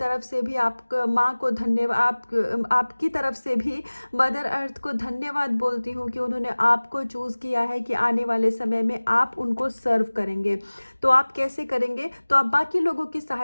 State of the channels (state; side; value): inverted; both; correlation -1.00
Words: से भी आप माँ को धन्यवाद, आपकी तरफ से भी मदर अर्थ को धन्यवाद बोलती हूँ कि उन्होंने आपको चूज़ किया है कि आने वाले समय में आप उनको सर्व करेंगे। तो आप कैसे करेंगे? तो आप बाकी लोगों की